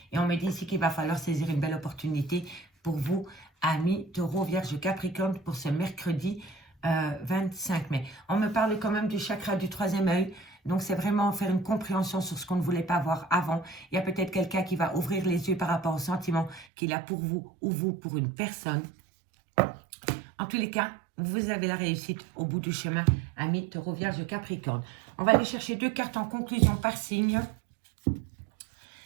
Et on me dit ici qu'il va falloir saisir une belle opportunité pour vous, amis taureau, vierge, capricorne, pour ce mercredi 25 mai. On me parle quand même du chakra du troisième œil. Donc, c'est vraiment faire une compréhension sur ce qu'on ne voulait pas voir avant. Il y a peut-être quelqu'un qui va ouvrir les yeux par rapport au sentiment qu'il a pour vous ou vous pour une personne. En tous les cas, vous avez la réussite au bout du chemin, amis taureau, vierge, capricorne. On va aller chercher 2 cartes en conclusion par signe.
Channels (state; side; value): drops out; left; at 16.7 s